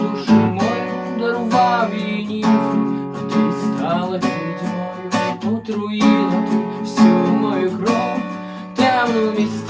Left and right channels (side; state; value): both; identical; correlation 1.00